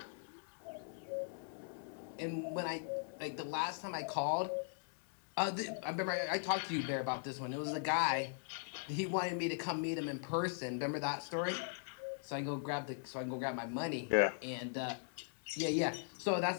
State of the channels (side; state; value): right; silent; digital silence